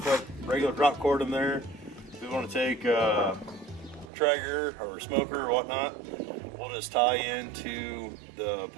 regular drop cord in there. If we want to take a Traeger or a smoker or whatnot, we'll just tie into the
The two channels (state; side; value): drops out; left; at 4.1 s